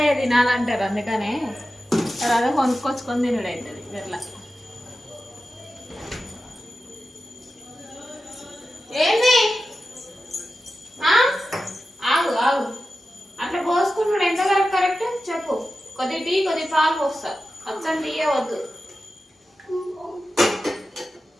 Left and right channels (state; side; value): normal; both; correlation 0.93